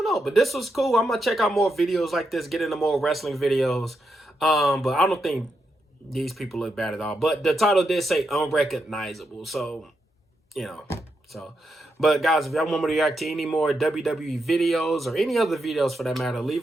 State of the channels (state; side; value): normal; both; correlation 0.84